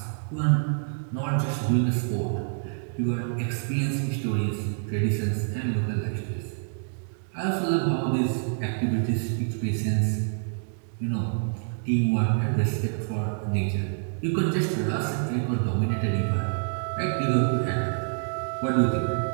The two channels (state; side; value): silent; left; digital silence